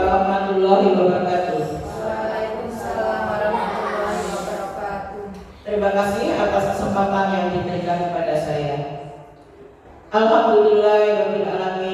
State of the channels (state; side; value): identical; both; correlation 1.00